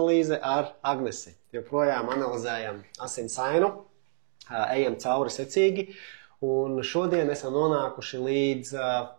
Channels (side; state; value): left; silent; digital silence